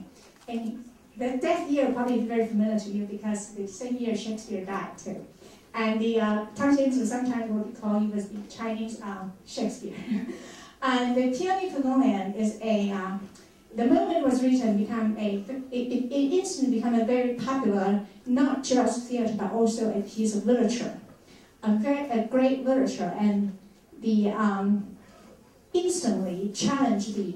And the death year probably is very familiar to you because the same year Shakespeare died too. And Tang Xianzu sometimes will be called, he was the Chinese Shakespeare. And the Peony Pavilion is the moment it was written, it instantly became a very popular, not just theater, but also a piece of literature. A great literature, and instantly challenged the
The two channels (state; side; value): identical; both; correlation 1.00